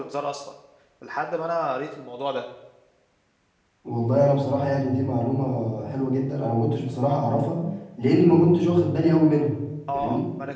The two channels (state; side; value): identical; both; correlation 1.00